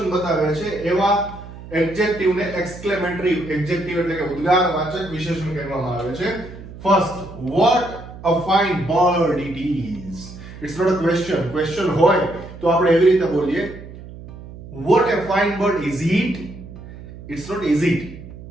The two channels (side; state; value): right; noise; hum, 15 dB below the sound